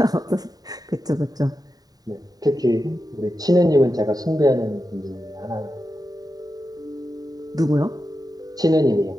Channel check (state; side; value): late; left; 0.18 ms